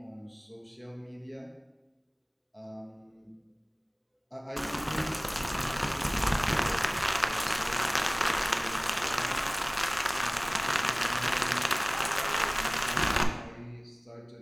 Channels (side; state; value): both; identical; correlation 1.00